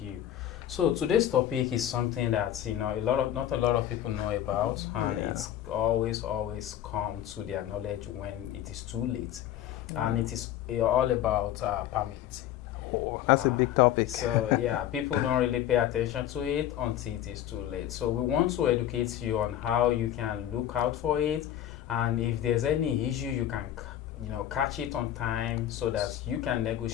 you. So today's topic is something that not a lot of people know about, and it's always come to their knowledge when it is too late, and it is all about permit. That's a big topic. So yeah, people don't really pay attention to it until it is too late. So we want to educate you on how you can look out for it, and if there's any issue, you can catch it on time so that you can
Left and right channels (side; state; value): right; quieter; 11.7 dB